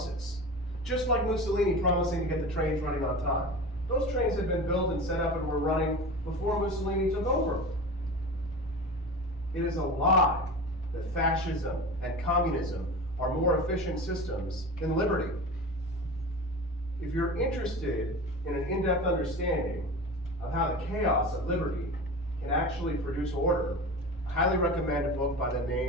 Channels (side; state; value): both; normal; correlation 0.31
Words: Just like Mussolini promising to get the trains running on time. Those trains had been built and set up and were running before Mussolini took over. It is a lie that fascism and communism are more efficient systems than liberty. If you're interested in an in-depth understanding of how the chaos of liberty can actually produce order, I highly recommend a book by the